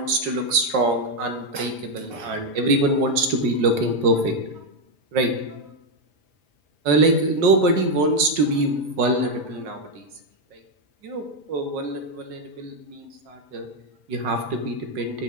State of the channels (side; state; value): left; late; 5.5 ms